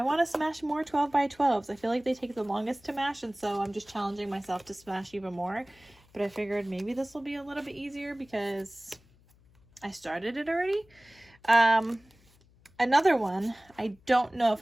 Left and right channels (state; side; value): noise; left; hum, 29 dB below the sound